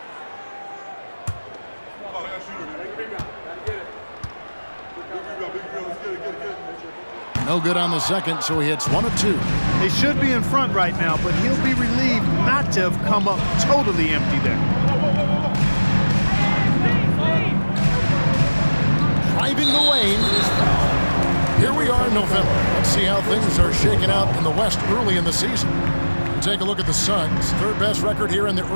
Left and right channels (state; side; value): inverted; both; correlation -1.00